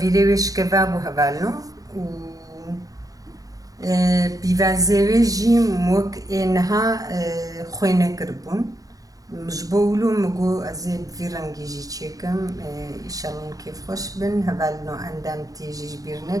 شكفابو هبالو بيفازيوي جي موك إنها خوينة كربون مجبولو مگو ازي في رنگي جي تشيكم إشالون كيف خوش بن هبالنو عندام تيجي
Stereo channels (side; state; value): left; late; 0.17 ms